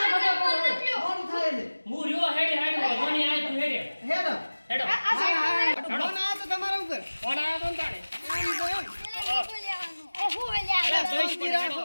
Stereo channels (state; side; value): inverted; both; correlation -1.00